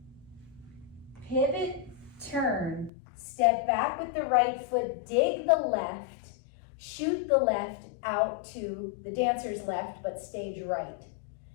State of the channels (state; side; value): drops out; right; at 2.9 s